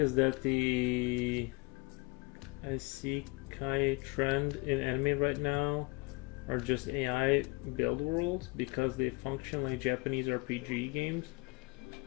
that the isekai trend in anime right now are just AI build worlds because they function like Japanese RPG games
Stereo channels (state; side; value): quieter; right; 27.1 dB